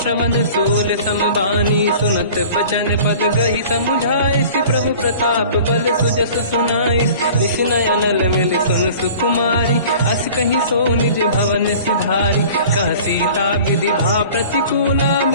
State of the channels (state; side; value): inverted; both; correlation -0.44